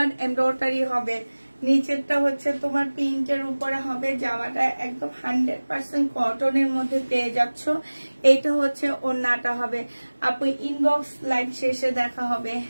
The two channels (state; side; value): inverted; both; correlation -1.00